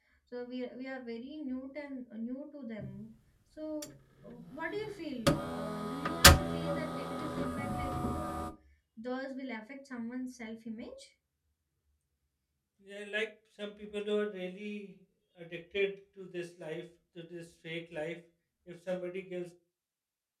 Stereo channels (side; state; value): both; identical; correlation 1.00